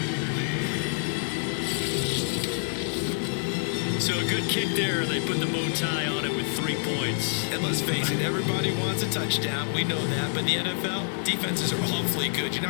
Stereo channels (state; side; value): silent; right; 59 dB below the other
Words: So a good kick there, and they put the bow tie on it with 3 points. And let's face it, everybody wants a touchdown. We know that. But in the NFL, defenses are awfully good. You're